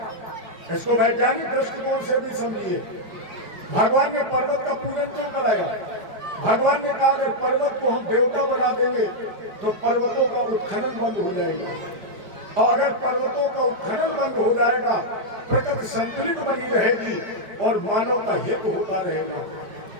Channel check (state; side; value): late; left; 5.0 ms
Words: इसको वैज्ञानिक दृष्टिकोण से भी समझिए, भगवान ने पर्वत का पूजन क्यों कराया? भगवान ने कहा अगर पर्वत को हम देवता बना देंगे तो पर्वतों का उत्खनन बंद हो जाएगा, और अगर पर्वतों का उत्खनन बंद हो जाएगा प्रकृति संतुलित बनी रहेगी और मानव का हित होता रहेगा।